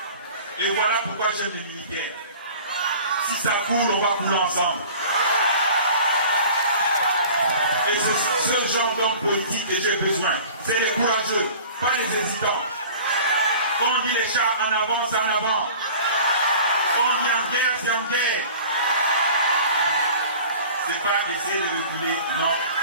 Et voilà pourquoi j'aime les militaires. Si ça coule, on va couler ensemble. Et c'est ce genre d'homme politique que j'ai besoin. C'est les courageux, pas les hésitants. Quand on dit les chars en avant, c'est en avant. Quand on dit en guerre, c'est en guerre. C'est pas essayer de reculer. Non,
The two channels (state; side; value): inverted; both; correlation -0.43